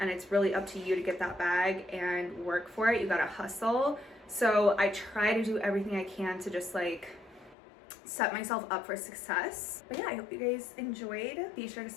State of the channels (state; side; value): drops out; right; at 7.6 s